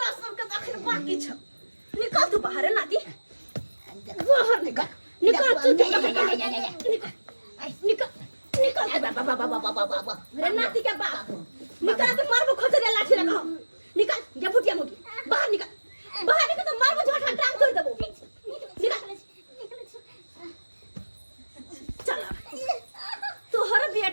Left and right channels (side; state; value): both; inverted; correlation -1.00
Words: सबके अखन बाकी छ। निकल तू बाहर नाती, बाहर निकल तू निकल रे नाती के बाप निकल तो मारबो खोजरे लाठी लगाओ। निकल जा फुटिया मोगी बाहर निकल तो मारबो झोटा टांग तोड़ देबो। निकल चल तोहर